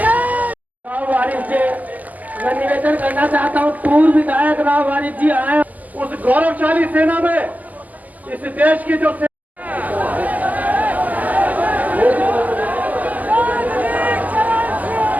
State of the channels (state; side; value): late; left; 0.080 ms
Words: मैं निवेदन करना चाहता हूँ, पूर्व विधायक राव वारिस जी आए उस गौरवशाली सेना में, इस देश की जो